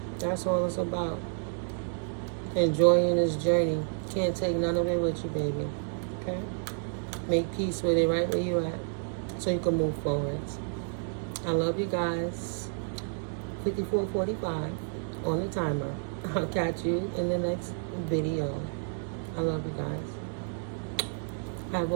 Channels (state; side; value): silent; left; digital silence